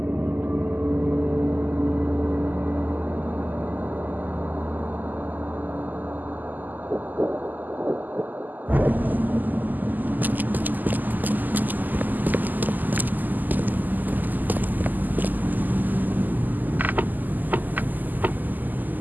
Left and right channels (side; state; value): left; late; 0.085 ms